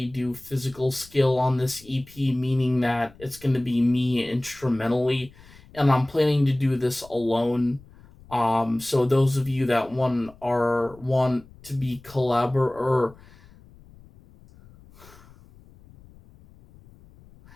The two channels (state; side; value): noise; left; rumble, 24 dB below the sound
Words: do physical skill on this EP, meaning that it's going to be me instrumentally, and I'm planning to do this alone. So those of you that want to be or